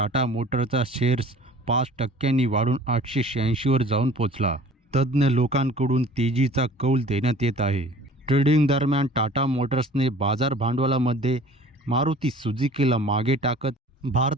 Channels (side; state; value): both; normal; correlation 0.48